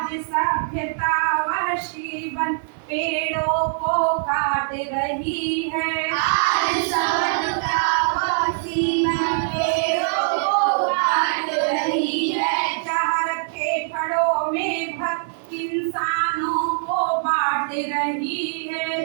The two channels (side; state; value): left; silent; digital silence